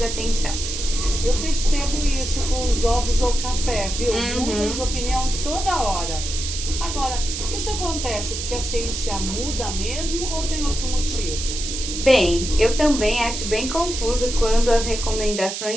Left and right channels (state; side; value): noise; right; hiss, 5 dB below the sound